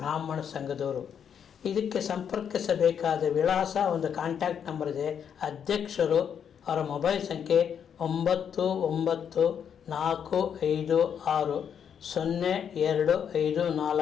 ಸಂಘದವರು. ಇದಕ್ಕೆ ಸಂಪರ್ಕಿಸಬೇಕಾದ ವಿಳಾಸ, ಒಂದು ಕಾಂಟ್ಯಾಕ್ಟ್ ನಂಬರ್ ಇದೆ. ಅಧ್ಯಕ್ಷರು ಅವರ ಮೊಬೈಲ್ ಸಂಖ್ಯೆ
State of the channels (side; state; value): right; quieter; 8.0 dB